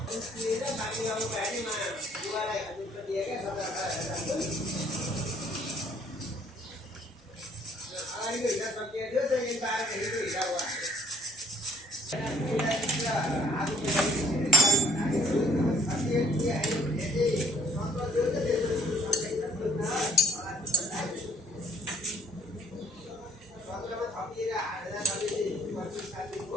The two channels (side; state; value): both; normal; correlation 0.58